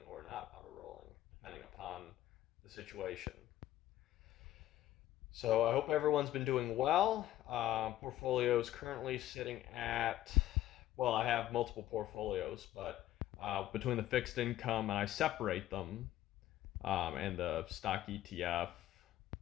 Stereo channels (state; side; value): quieter; right; 13.8 dB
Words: or not auto rolling, depending upon the situation. So I hope everyone's been doing well. Portfolio is currently sitting at Well, I have multiple portfolios, but between the fixed income and I separate them, and the stock ETF